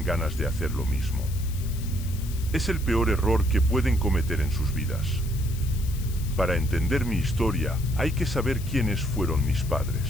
ganas de hacer lo mismo. Es el peor error que pueden cometer en sus vidas. Para entender mi historia, hay que saber quiénes fueron mis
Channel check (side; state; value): left; noise; hiss, 16 dB below the sound